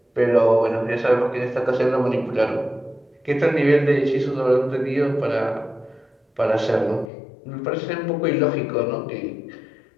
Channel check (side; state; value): right; drops out; at 7.1 s